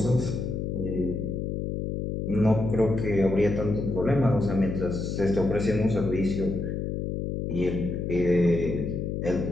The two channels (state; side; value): noise; left; hum, 3 dB below the sound